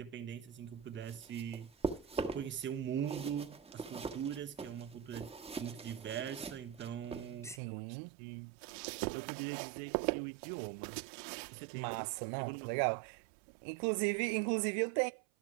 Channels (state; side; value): drops out; left; at 7.6 s